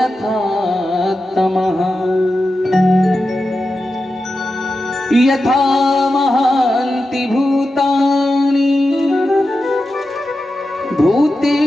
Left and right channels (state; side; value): normal; both; correlation 0.91